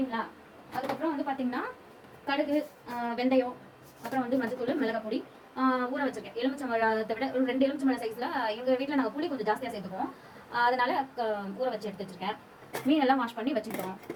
அதுக்கப்புறம் வந்து பார்த்தீங்கன்னா கடுகு, வெந்தயம், அப்புறம் வந்து மஞ்சத்தூள், மிளகாய் பொடி ஊற வச்சிருக்கேன். எலுமிச்சம்பழத்தை விட ஒரு 2 எலுமிச்சம்பழம் சைஸ்ல எங்கள் வீட்டில் நாங்கள் புளி கொஞ்சம் ஜாஸ்தியாக சேர்த்துக்குவோம். அதனால ஊற வச்சு எடுத்து வச்சிருக்கேன். மீன் எல்லாம் வாஷ் பண்ணி வச்சுக்கிட்டோம்.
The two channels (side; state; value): both; identical; correlation 1.00